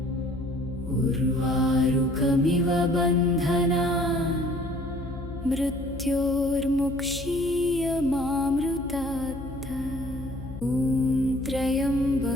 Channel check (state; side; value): noise; left; hum, 12 dB below the sound